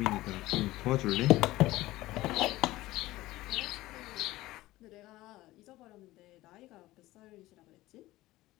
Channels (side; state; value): right; quieter; 17.5 dB